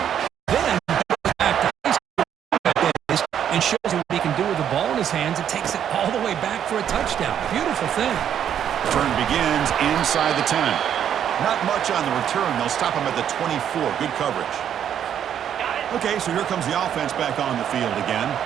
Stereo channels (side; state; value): left; quieter; 9.4 dB